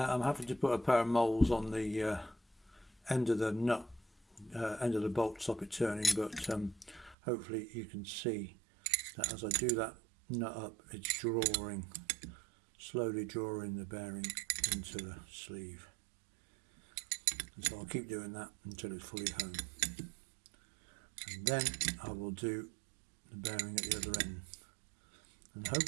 I'm having to put a pair of moles on the end of the nut, end of the bolt to stop it turning, but hopefully you can see that as I do that nut up, it's slowly drawing the bearing into the sleeve. And so I'll keep doing that until it's fully home. And then I will do the bearing at the other end. And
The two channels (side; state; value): left; drops out; at 7.2 s